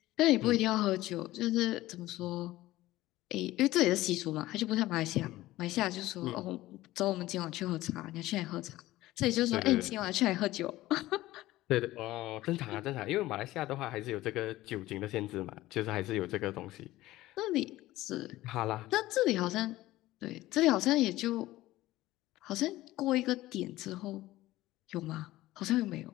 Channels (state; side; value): quieter; right; 16.8 dB